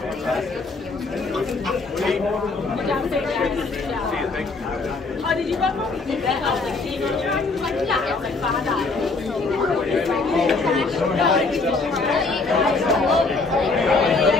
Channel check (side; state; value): right; quieter; 3.8 dB